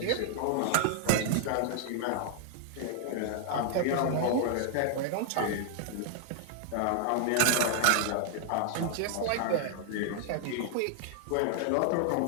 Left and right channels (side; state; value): both; different; correlation 0.00